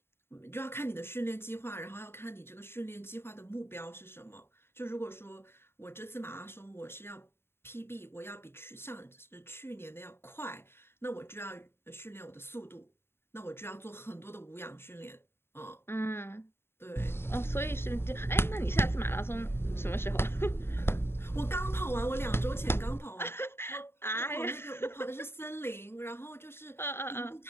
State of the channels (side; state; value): right; late; 0.11 ms